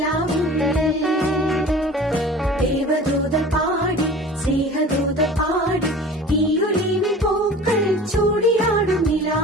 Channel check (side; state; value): both; normal; correlation 0.41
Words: ദേവദൂത പാടി സ്നേഹദൂത പാടി ഈയൊലിവിൻ പൂക്കൾ ചൂടിയാടും